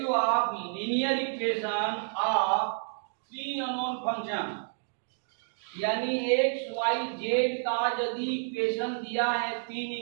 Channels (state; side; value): silent; left; digital silence